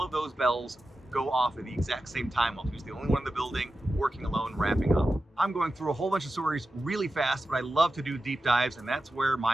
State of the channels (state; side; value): normal; both; correlation 0.92